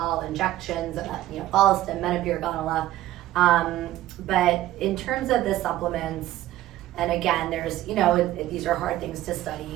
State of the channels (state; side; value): quieter; left; 14.6 dB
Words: injections, you know, Follistim, Menopur, Gonala. But in terms of the supplements, and again, there's, you know, these are hard things to